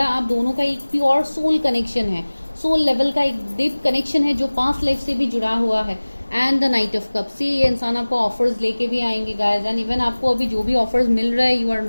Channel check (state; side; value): inverted; both; correlation -1.00